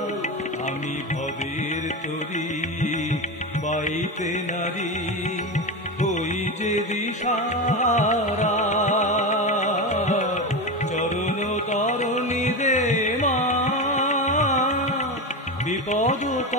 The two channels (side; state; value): both; normal; correlation 0.19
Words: আমি ভবের তরি বাইতে নারী, ওই যে দিশাহারা। চরণ তরণী দে মা, বিপদ